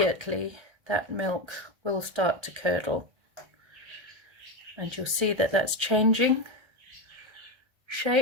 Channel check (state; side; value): late; left; 1.3 ms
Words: that milk will start to curdle. And you'll see that that's changing